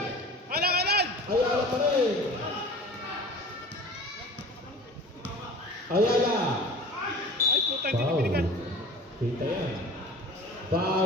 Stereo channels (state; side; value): normal; both; correlation 0.41